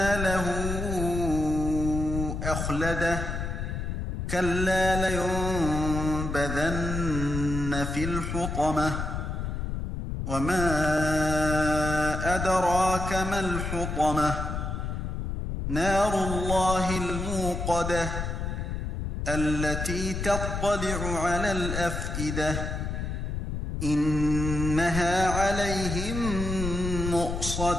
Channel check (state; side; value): noise; left; rumble, 3 dB below the sound